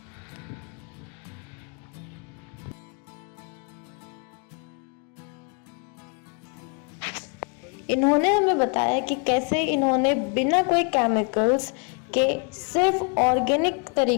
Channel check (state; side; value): quieter; right; 36.9 dB